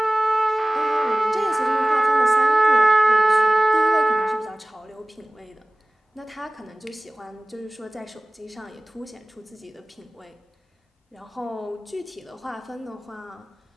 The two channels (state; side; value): normal; both; correlation 0.98